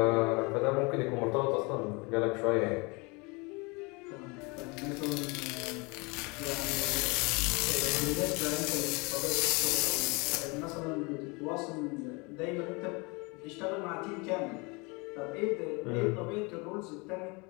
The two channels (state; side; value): quieter; right; 28.3 dB